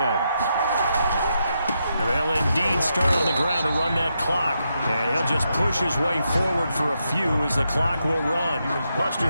And they'll indeed start on the ground to run that clock. And he'll just push his way forward for a few as the clock will run.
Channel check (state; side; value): inverted; both; correlation -0.83